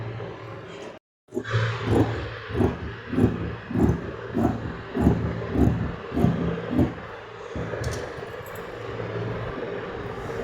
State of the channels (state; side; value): identical; both; correlation 1.00